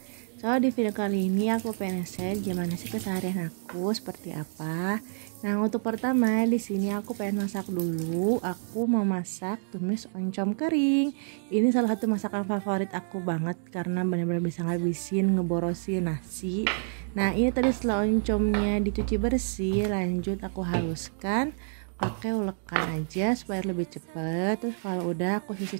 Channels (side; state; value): left; silent; digital silence